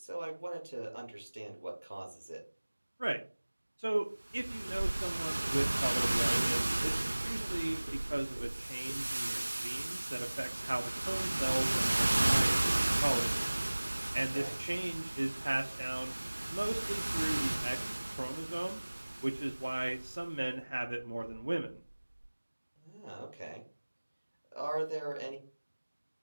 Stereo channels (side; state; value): both; inverted; correlation -1.00